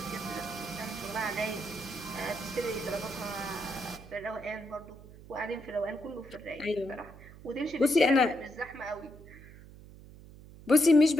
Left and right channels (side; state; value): right; noise; hum, 18 dB below the sound